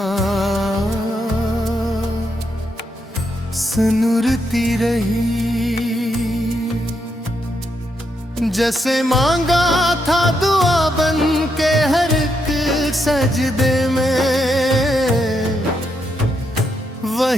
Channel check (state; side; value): normal; both; correlation 0.80